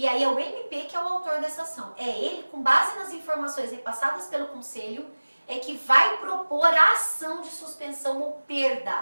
aí é o MP que é o autor dessa ação. É ele, com base nas informações repassadas pelo conselho, é que vai propor a ação de suspensão ou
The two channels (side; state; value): both; inverted; correlation -1.00